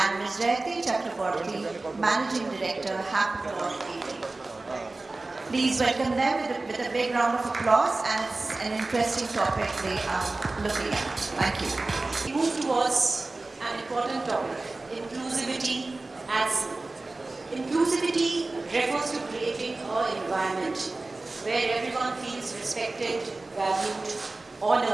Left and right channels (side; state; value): left; quieter; 3.2 dB